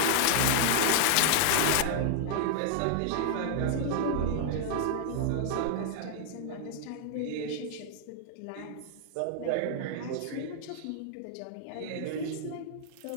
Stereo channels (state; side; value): different; both; correlation 0.00